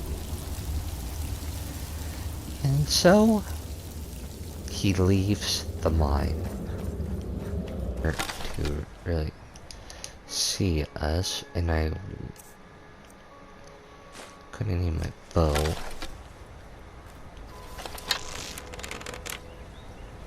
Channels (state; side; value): identical; both; correlation 1.00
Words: And so, he leaves the mine to really see us, and I couldn't need my bow.